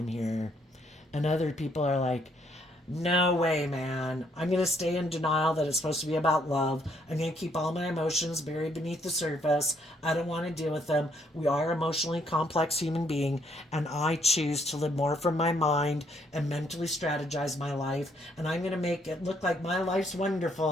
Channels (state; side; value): normal; both; correlation 0.69